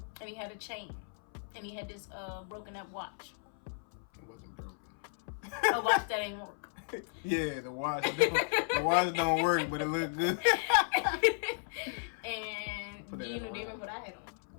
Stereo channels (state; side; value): silent; right; 55 dB below the other